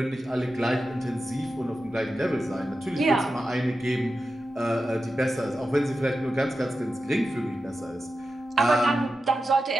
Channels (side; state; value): both; normal; correlation 0.91